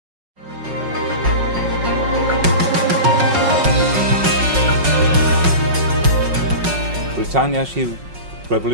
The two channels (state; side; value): late; left; 5.4 ms